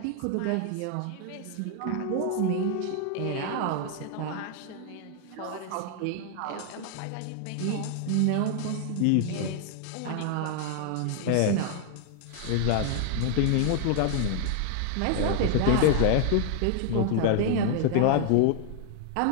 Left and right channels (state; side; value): different; both; correlation 0.00